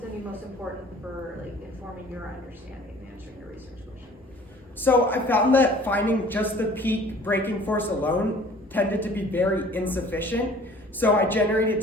to be most important for informing your understanding and answering your research question? So I found that finding just the peak breaking force alone tended to be very insufficient. So I generated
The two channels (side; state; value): both; normal; correlation 0.50